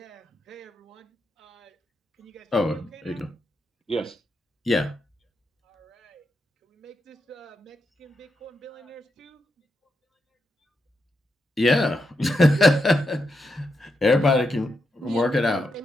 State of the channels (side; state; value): both; normal; correlation 0.84